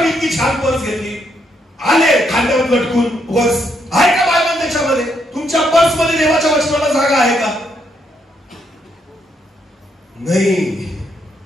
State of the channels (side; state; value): both; normal; correlation 0.76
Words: इतकी छान पर्स घेतली, आले खांद्यावर लटकून पर्स. आहे का बायबल त्याच्यामध्ये? तुमच्या पर्स मध्ये देवाच्या वचनाला जागा आहे का? नाही.